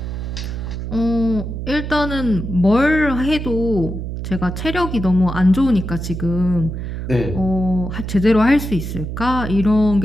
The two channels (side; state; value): right; noise; hum, 6 dB below the sound